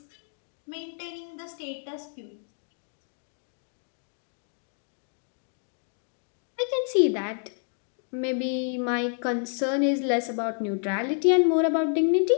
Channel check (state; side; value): silent; right; 59 dB below the other